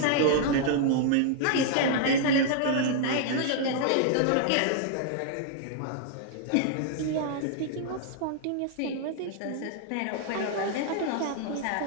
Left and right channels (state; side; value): different; both; correlation -0.01